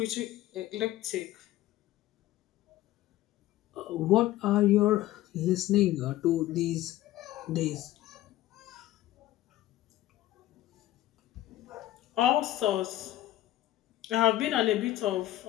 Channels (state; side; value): quieter; right; 14.8 dB